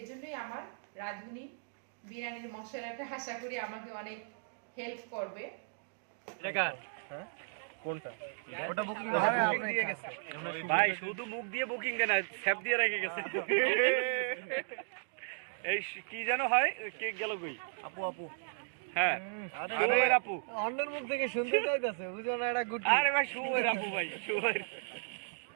আমার রাঁধুনি বিরিয়ানির মশলাটা আশা করি আমাকে অনেক হেল্প করবে। হ্যাঁ কোনটা? ওটা বুকিং দিয়ে গেছে ভাই, শুধু মুখ দিয়ে বুকিং কেন, স্যাপ দিয়ে রেখে গেছে। এই কি যেন হয়, কেক গেল কই? আপু আপু হ্যাঁ শুভের আপু। অন্যের মুখ থেকে শুনতে চাইতেছে, বুঝো না এটা গুটি। আরে ভাই শুভের আপু, ভাই শুভের।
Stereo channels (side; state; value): left; silent; digital silence